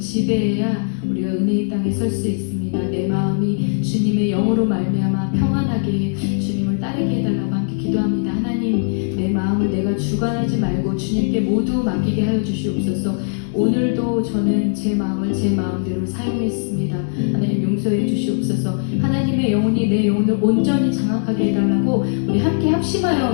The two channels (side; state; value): right; silent; digital silence